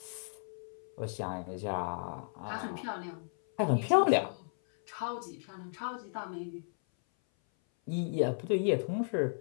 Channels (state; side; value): silent; right; 55 dB below the other